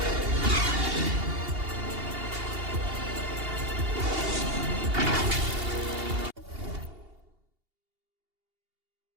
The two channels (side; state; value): left; late; 2.8 ms